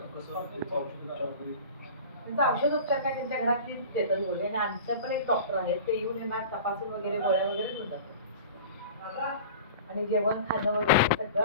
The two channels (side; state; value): both; inverted; correlation -0.38